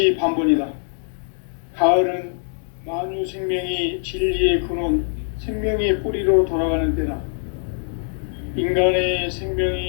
가을은 만유 생명이 진리의 근원, 생명의 뿌리로 돌아가는 때다. 인간의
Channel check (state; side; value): silent; right; digital silence